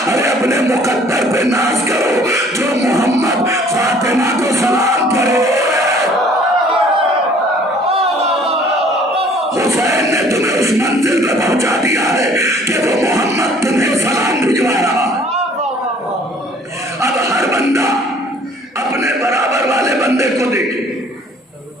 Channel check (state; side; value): normal; both; correlation 0.55